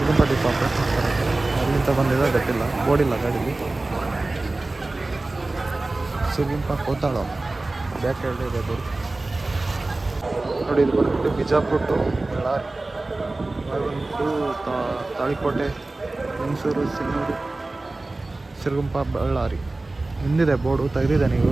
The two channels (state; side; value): quieter; left; 3.1 dB